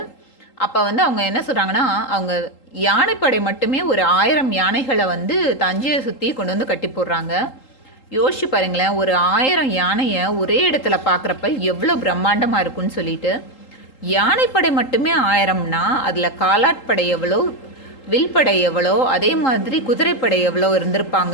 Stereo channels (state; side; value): late; right; 3.8 ms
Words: அப்போ வந்து அவங்க என்ன சொல்கிறாங்கன்னா, அவங்க யானைப்படை மட்டுமே ஒரு 1000 யானைகளை வந்து தஞ்சையை சுற்றி கொண்டு வந்து கட்டி போடுறாங்க. யோசிச்சு பாருங்களேன், ஒரு 1000 யானையை ஒரே இடத்துல பார்க்குறப்ப எவ்வளோ பிரம்மாண்டமாக இருக்குன்னு சொல்லிட்டு. யானைப்படை மட்டுமே 1000னா அதில் காலாட்படை எவ்வளோ, வில்படை எவ்வளோ, அதே மாதிரி குதிரைப்படை எவ்வளோ